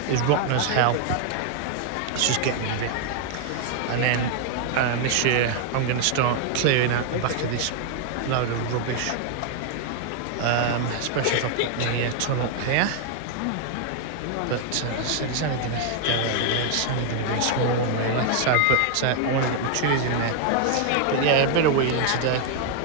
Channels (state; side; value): different; both; correlation 0.00